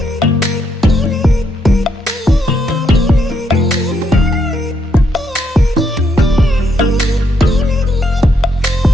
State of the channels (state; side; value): normal; both; correlation 0.76